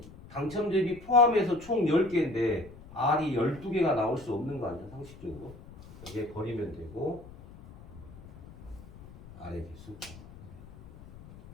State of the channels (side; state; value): left; noise; rumble, 18 dB below the sound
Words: 당첨 대비 포함해서 총 10개인데 R이 12개가 나올 수 없는 거 아니야, 상식적으로? 이게 버리면 되고, R의 개수.